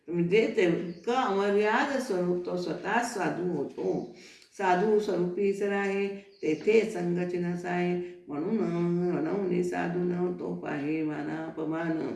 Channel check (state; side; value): identical; both; correlation 1.00